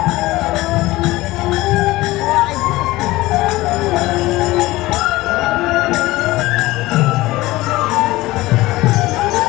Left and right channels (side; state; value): right; quieter; 18.7 dB